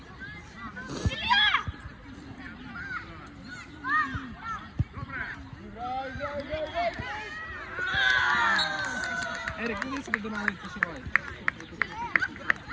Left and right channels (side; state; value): both; identical; correlation 1.00